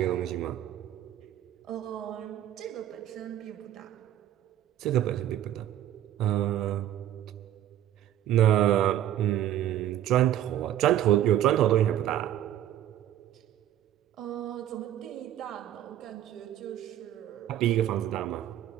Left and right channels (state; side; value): quieter; left; 11.8 dB